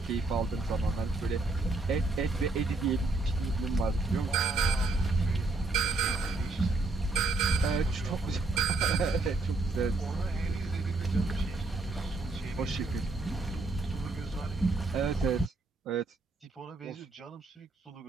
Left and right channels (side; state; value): left; quieter; 3.3 dB